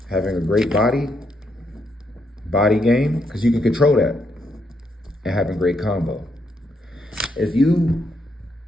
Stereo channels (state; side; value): normal; both; correlation 0.77